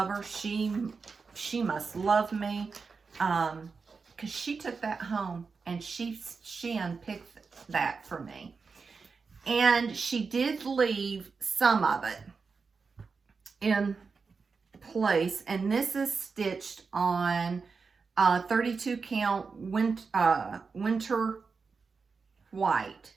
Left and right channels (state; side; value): quieter; left; 4.9 dB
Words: her. She must love me, because she took that home and she unpicked that for me. And she did leave some of it in place, and this is stitched on 32 count winter white